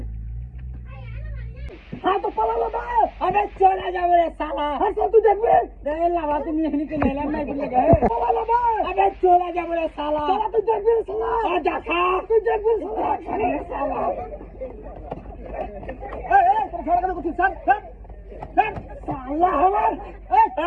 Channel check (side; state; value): both; identical; correlation 1.00